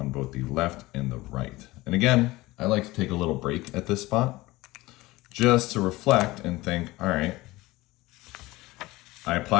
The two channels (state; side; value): quieter; right; 19.7 dB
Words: both the left and the right. And again, I like to take a little break at this spot just to reflect and think, all right, I